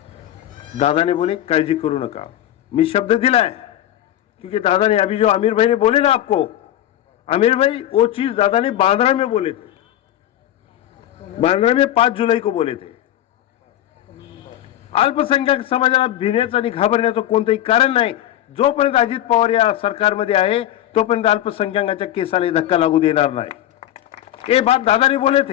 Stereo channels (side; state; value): right; quieter; 12.4 dB